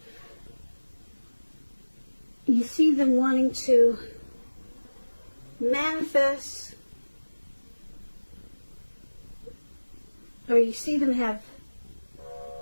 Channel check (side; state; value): both; inverted; correlation -1.00